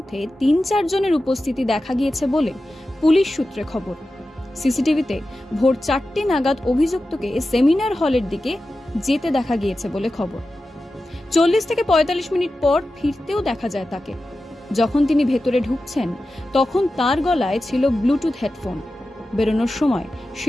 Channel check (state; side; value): normal; both; correlation 0.93